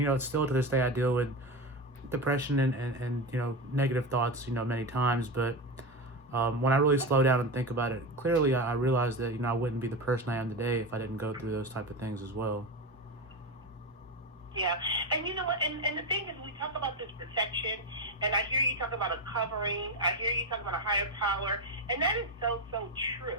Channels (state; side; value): normal; both; correlation 0.17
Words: still to this day I deal with depression and negative thoughts many times. But when I really slow down and think about it clearly, I realized that I wouldn't be the person I am today if I didn't go through those type of things as well. Yeah, and you know what, and the thing is, we talk about this protection, and I hear you talk about a covering, I hear you talk about a higher power, and that is so